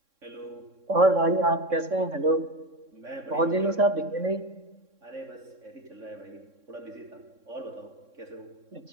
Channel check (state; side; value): late; left; 3.6 ms